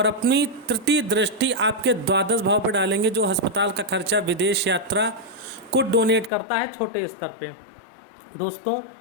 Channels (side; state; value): right; drops out; at 6.3 s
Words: अपनी तृतीय दृष्टि आपके 12वें भाव पर डालेंगे, जो अस्पताल का खर्चा, विदेश यात्रा को डोनेट करता है छोटे स्तर पे। दोस्तों,